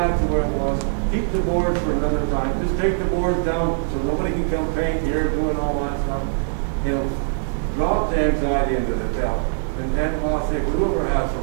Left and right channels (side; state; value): left; silent; digital silence